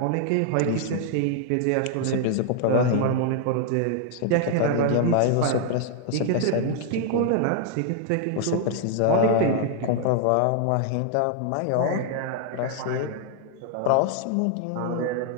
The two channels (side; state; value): both; different; correlation 0.00